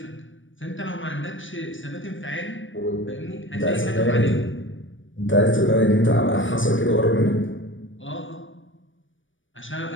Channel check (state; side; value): late; right; 0.56 ms